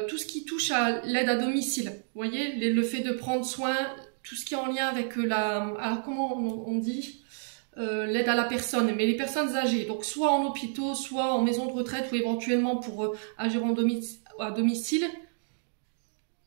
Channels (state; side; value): silent; left; digital silence